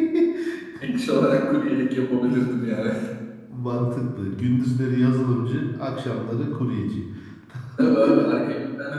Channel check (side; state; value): both; identical; correlation 1.00